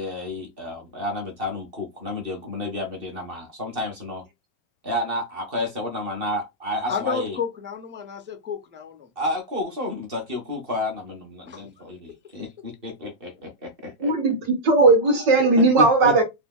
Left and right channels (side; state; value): left; late; 2.7 ms